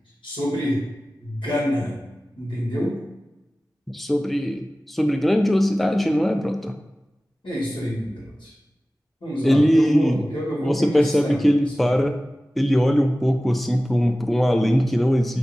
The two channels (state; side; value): normal; both; correlation 0.97